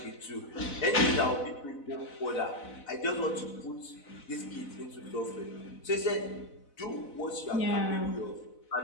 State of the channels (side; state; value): right; late; 4.0 ms